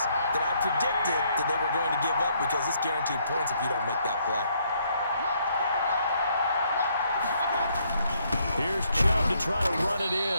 that I predicted that they were going to give up, because it's guaranteed points if you don't make that play. Here's Chubb to try to run it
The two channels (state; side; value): inverted; both; correlation -0.70